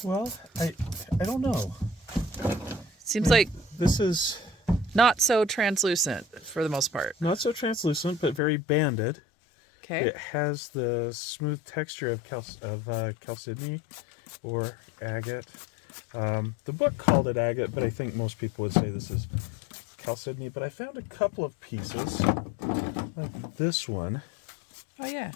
Well, I don't know. Seems like This is not so translucent for the most part. not so translucent, but very banded. Okay. It has the smooth texture of chalcedony or agate. The book called it agate, but I think most people would say this is chalcedony. But I found a couple of pieces, like this one, Oh yeah.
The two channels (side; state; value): right; drops out; at 8.4 s